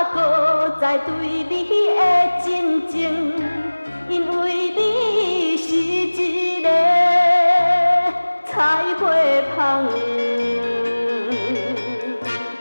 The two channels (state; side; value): inverted; both; correlation -1.00